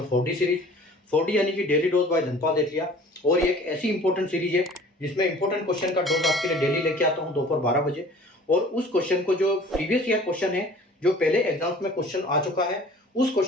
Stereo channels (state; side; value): normal; both; correlation 0.48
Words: 4D सीरीज। 4D यानी कि डेली डोज बाय धनपाल एथलिया। और ये एक ऐसी इंपॉर्टेंट सीरीज है जिसमें इंपॉर्टेंट क्वेश्चन का डोज आपके लिए डेली लेके आता हूँ दोपहर 12 बजे। और उस क्वेश्चन को, जो प्रीवियस ईयर क्वेश्चन है, जो पहले एग्जाम्स में क्वेश्चन आ चुका है, उस